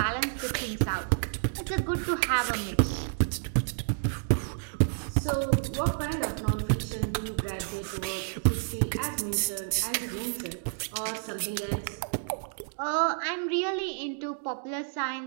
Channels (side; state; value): left; silent; digital silence